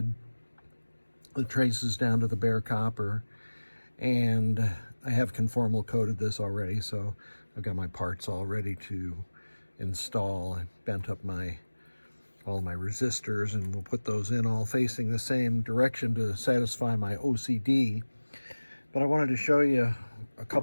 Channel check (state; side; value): inverted; both; correlation -1.00